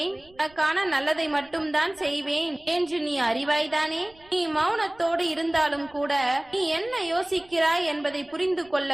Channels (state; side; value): noise; right; rumble, 28 dB below the sound